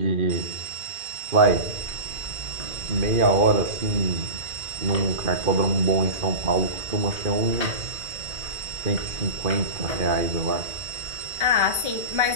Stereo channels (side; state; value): left; late; 2.4 ms